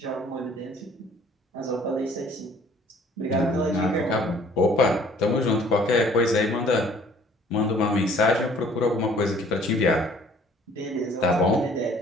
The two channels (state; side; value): normal; both; correlation 0.55